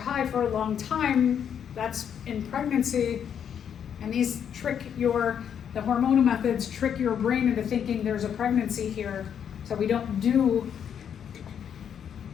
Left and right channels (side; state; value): right; quieter; 8.4 dB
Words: for a long time, that's in pregnancy, and these the hormonal methods trick your brain into thinking there's a pregnancy here, so we don't do